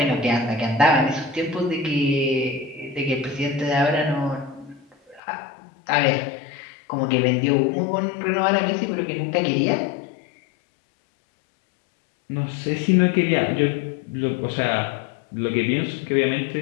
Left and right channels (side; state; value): right; drops out; at 5.2 s